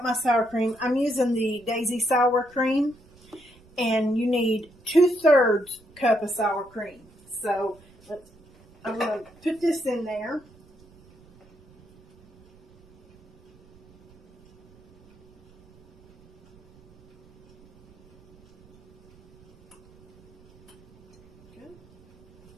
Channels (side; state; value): right; noise; rumble, 27 dB below the sound